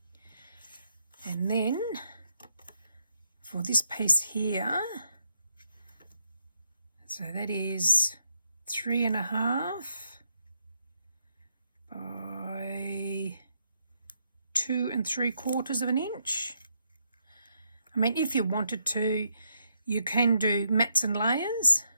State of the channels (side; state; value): both; inverted; correlation -0.77